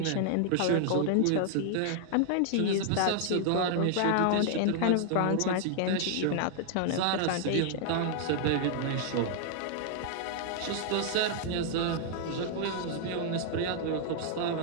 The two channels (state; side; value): different; both; correlation 0.00